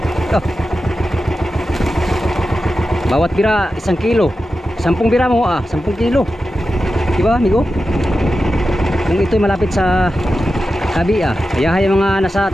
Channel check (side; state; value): both; normal; correlation 0.91